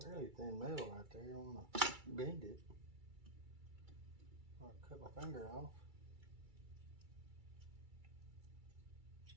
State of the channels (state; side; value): late; left; 2.3 ms